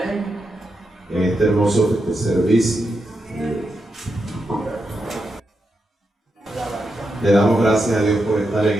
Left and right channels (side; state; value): both; normal; correlation 0.86